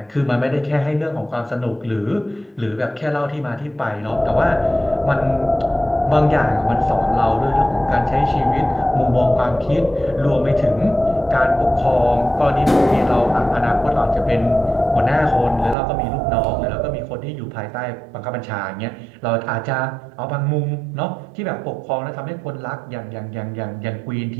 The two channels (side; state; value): left; drops out; at 15.8 s